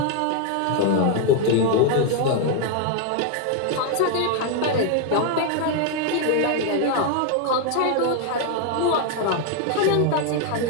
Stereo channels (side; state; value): both; different; correlation 0.01